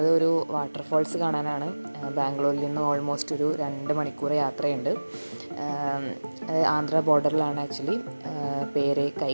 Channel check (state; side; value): inverted; both; correlation -1.00